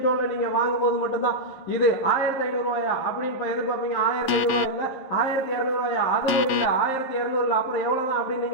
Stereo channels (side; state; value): right; late; 11 ms